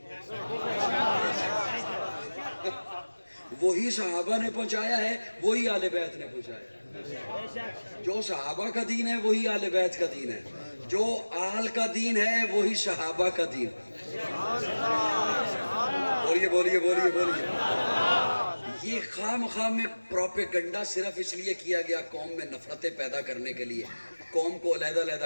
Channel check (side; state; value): both; inverted; correlation -1.00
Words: وہی صحابہ نے پہنچایا ہے، وہی اہل بیت نے پہنچایا. جو صحابہ کا دین ہے وہی اہل بیت کا دین ہے، جو آل کا دین ہے وہی صحابہ کا دین. بولیے بولیے بولیے بولیے. یہ خام میں پروپیگنڈا صرف اس لیے کیا گیا قوم میں نفرتیں پیدا کرنے کے لیے، قوم کو